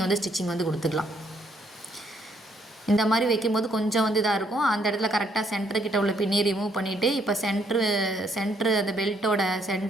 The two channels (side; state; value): both; normal; correlation 0.70